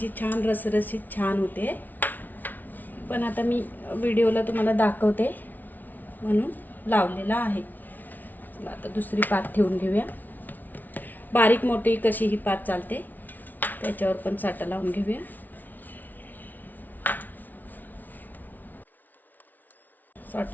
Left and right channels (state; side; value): late; right; 0.083 ms